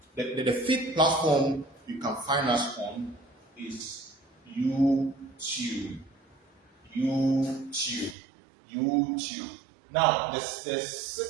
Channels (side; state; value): left; drops out; at 8.2 s